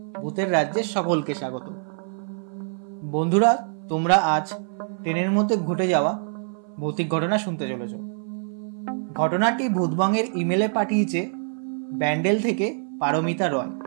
ভূতের রাজ্যের সকলকে স্বাগত। বন্ধুরা, তোমরা আজ ট্রেনের মধ্যে ঘটে যাওয়া ভৌতিক ঘটনা শুনতে চলেছ। ঘটনাটি ভূতবংয়ের ইমেলে পাঠিয়েছে ব্যান্ডেল থেকে পারমিতা রয়।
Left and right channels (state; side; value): silent; left; 62 dB below the other